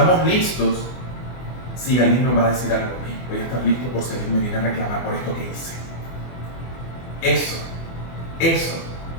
listos, si alguien nos va a decir algo, voy a estar listo por si alguien me viene a reclamar por esto que hice. Eso es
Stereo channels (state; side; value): late; right; 24 ms